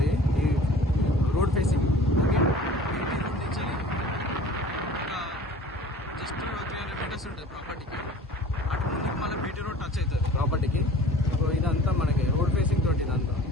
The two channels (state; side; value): normal; both; correlation 0.45